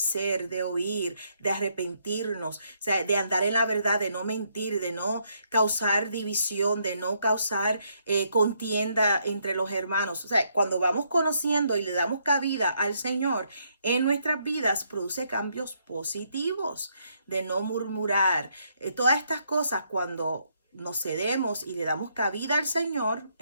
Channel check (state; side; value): inverted; both; correlation -0.74